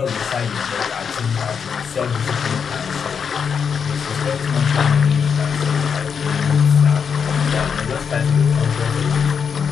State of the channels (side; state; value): right; quieter; 6.6 dB